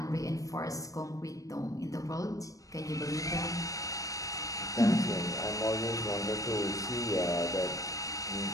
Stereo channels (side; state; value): right; late; 0.16 ms